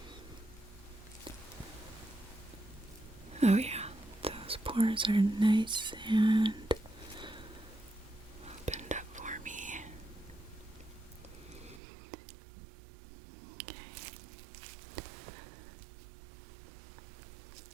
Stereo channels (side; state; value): left; drops out; at 11.8 s